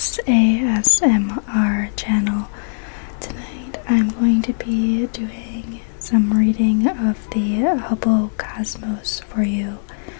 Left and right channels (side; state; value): right; silent; 66 dB below the other